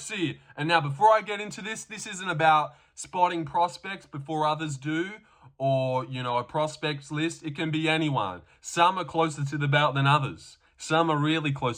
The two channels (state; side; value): identical; both; correlation 1.00